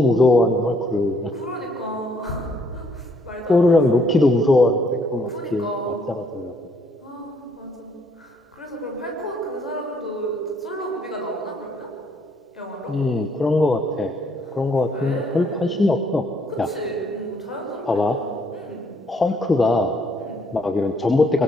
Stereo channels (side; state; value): both; normal; correlation 0.68